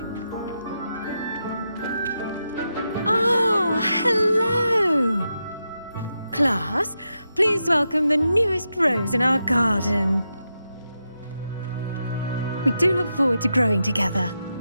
Ah, hello. Class, please welcome the newest rose in our garden. We do look forward to growing together.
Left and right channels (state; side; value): inverted; both; correlation -0.86